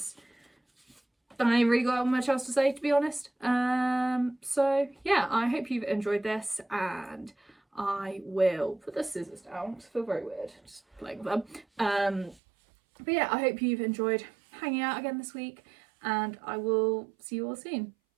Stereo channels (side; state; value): left; drops out; at 12.4 s